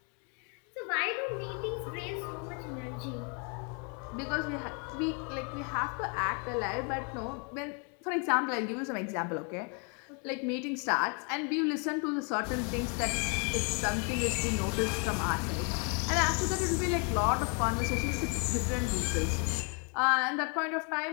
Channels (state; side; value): quieter; right; 36.8 dB